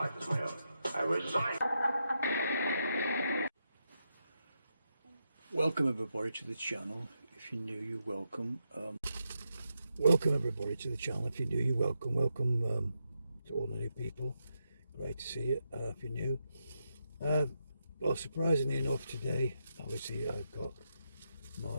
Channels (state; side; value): inverted; both; correlation -0.83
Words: is my own. I resign. Welcome everybody to the channel. If you're new, you're welcome. Welcome everybody to the channel. If you're new, you're welcome. Welcome to all the new people. Great to see you. If you're new, well, surprisingly enough, today, obviously, I've got